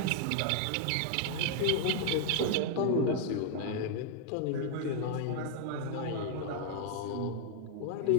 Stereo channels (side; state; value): both; different; correlation 0.00